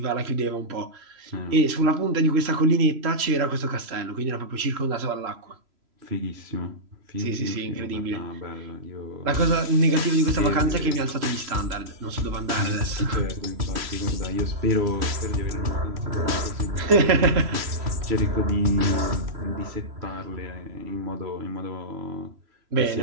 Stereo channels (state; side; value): late; left; 3.0 ms